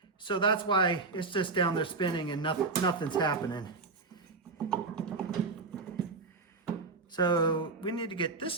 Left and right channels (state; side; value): quieter; left; 4.0 dB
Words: So that's why it's just down there spinning and nothing's happening. So we need to get this